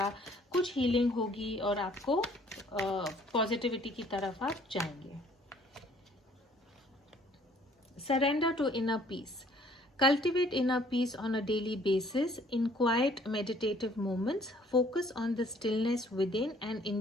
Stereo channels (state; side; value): normal; both; correlation 0.59